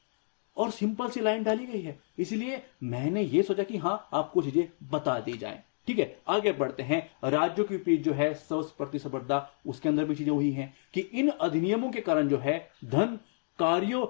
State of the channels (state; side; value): silent; right; digital silence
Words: और सिंपल सी लाइन डाली गई है, इसलिए मैंने ये सोचा कि हाँ आपको चीजें बता दी जाएं। ठीक है, आगे बढ़ते हैं। राज्यों के बीच जो है सर्वोच्च प्रतिस्पर्धा, उसके अंदर भी चीजें हुई हैं कि इन अधिनियमों के कारण जो है धन, कार्यों